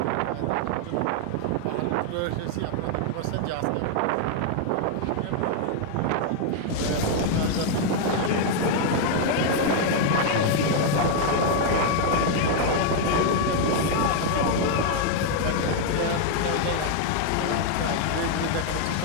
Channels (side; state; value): both; different; correlation 0.00